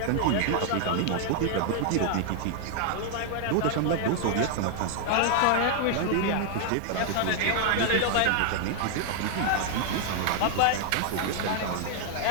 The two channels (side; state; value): both; different; correlation 0.00